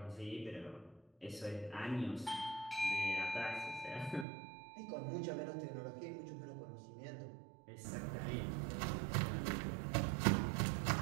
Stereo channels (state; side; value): drops out; left; at 4.2 s